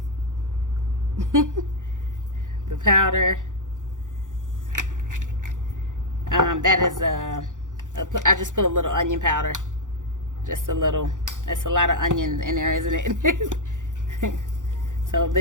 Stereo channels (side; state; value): left; late; 0.87 ms